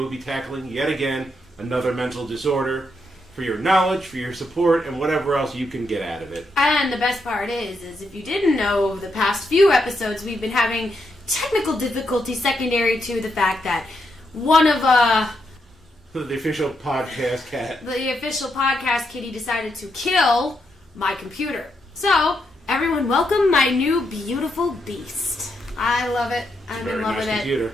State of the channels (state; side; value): normal; both; correlation 0.81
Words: be tackling, yet again, another mental disorder for your knowledge, for your support, and whatever else you can get out of it. And the best part is if you didn't know, over the past few episodes, we've been having technical difficulties secondary to the fact that one of, the official podcast cat. the official podcast kitty decided to kill my computer. So, everyone welcome my new beautiful beast. I love it. I'm in love with it. Computer.